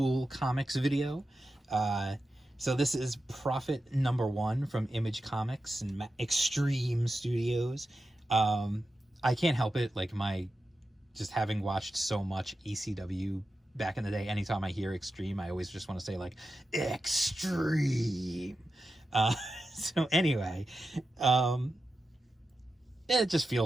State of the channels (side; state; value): both; normal; correlation 0.91